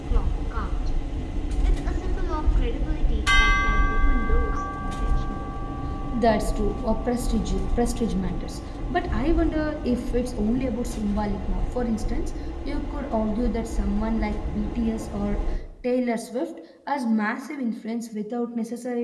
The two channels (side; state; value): both; identical; correlation 1.00